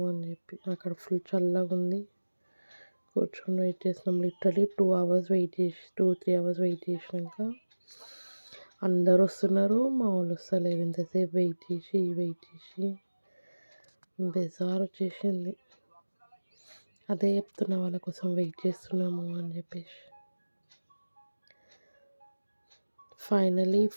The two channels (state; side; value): inverted; both; correlation -1.00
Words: అని చెప్పి అక్కడ ఫుల్ చల్లగా ఉంది. కూర్చొని వెయిట్ చేసినాం. లిటరలీ 2 hours వెయిట్ చేసి 2-3 hours వెయిట్ చేసినాక అందరు వస్తున్నారు, మా వాళ్ళు వస్తలేరు. ఇంతసేపు వెయిట్ చేసి బెజార్ వచ్చేసింది. అదే చెప్తున్నా వాళ్ళ కోసం వెయిట్ చేస్తున్నాము అని చెప్పేసి. ఫైనలీ